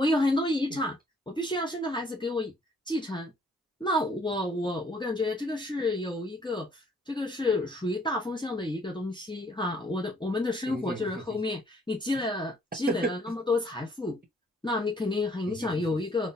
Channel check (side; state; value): both; normal; correlation 0.63